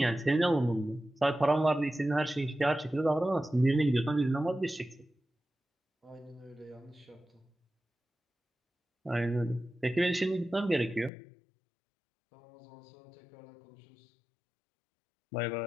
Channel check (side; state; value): right; drops out; at 11.1 s